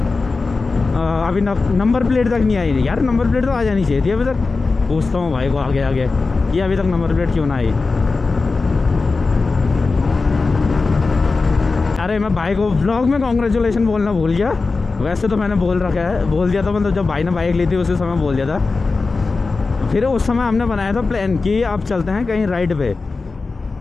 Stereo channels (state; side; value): quieter; right; 4.0 dB